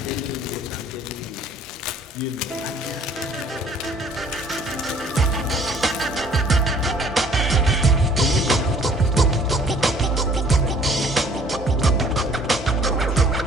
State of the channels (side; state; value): both; normal; correlation 0.56